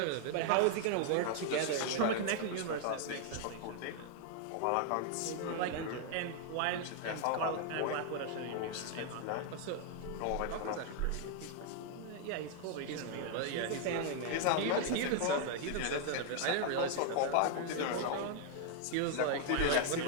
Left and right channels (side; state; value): both; different; correlation 0.00